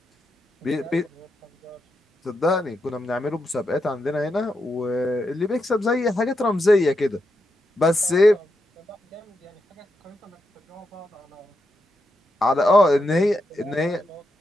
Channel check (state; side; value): normal; both; correlation 0.84